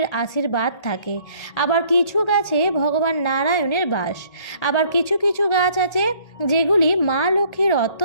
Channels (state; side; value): late; right; 1.8 ms